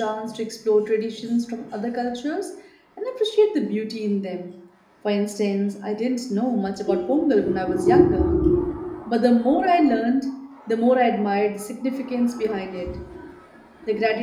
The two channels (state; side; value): identical; both; correlation 1.00